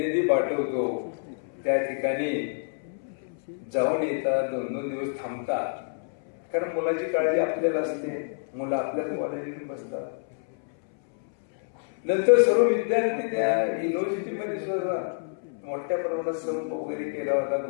पाठवतो, त्या ठिकाणी जाऊन येतात, 2-2 दिवस थांबतात, कारण मुलाची काळजी आपल्याला असते. मुलं आपल्याच कॉलेजमध्ये बसतात. नंतर सर्व विद्यार्थी त्या युनिव्हर्सिटीमध्ये सुद्धा मोठ्या प्रमाणात संप वगैरे केला होता,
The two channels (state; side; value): silent; right; 60 dB below the other